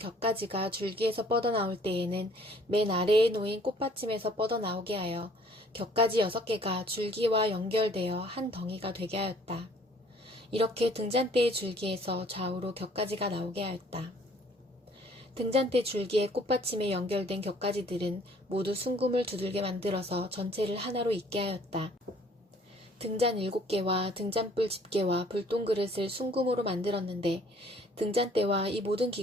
줄기에서 뻗어나올 때에는 맨 아래에 놓인 꽃받침에서 뻗어나오게 하여 격가지 6개가 줄기와 연결되어 한 덩이가 되게 하였다. 이렇게 등잔대의 줄기에서 좌우로 격가지가 나오게 하였다. 등잔대 줄기의 꽃받침에 연결된 격가지들은 모두 순금을 두들게 만들어서 전체를 하나로 있게 하였다. 등잔 7개와 등잔불 집게와 불똥그릇을 순금으로 만들었는데 등잔대와 이 모든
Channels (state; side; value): normal; both; correlation 0.57